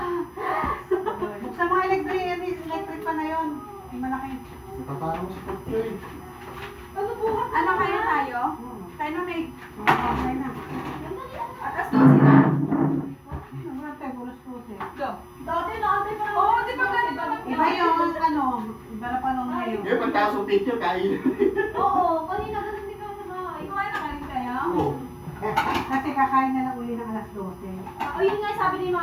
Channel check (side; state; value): both; identical; correlation 1.00